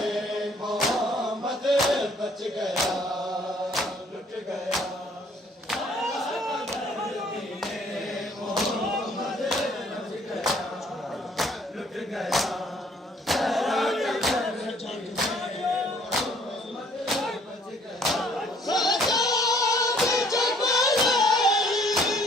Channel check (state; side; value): normal; both; correlation 0.60